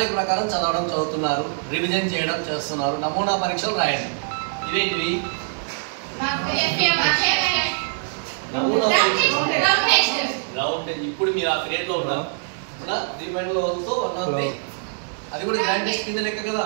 ప్రకారం చదువుతున్నారు, రివిజన్ చేయడం చేస్తున్నారు, నమూనా పరీక్షలు రాయండి. ఇవేంటివి, ఇప్పుడు మీరు ఆ పీరియడ్లో ఉన్నారు, అది కూడా గ్రాండ్ టెస్ట్ కింద లెక్క కదా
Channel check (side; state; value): left; silent; digital silence